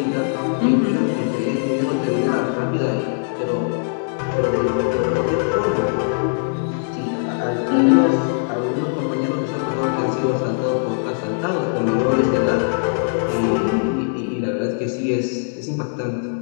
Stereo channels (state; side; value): silent; right; digital silence